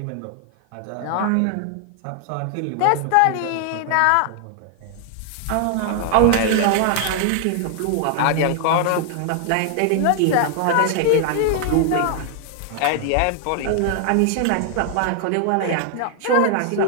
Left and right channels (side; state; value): both; different; correlation 0.00